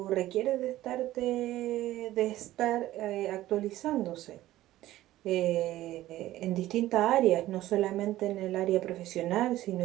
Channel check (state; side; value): quieter; left; 15.2 dB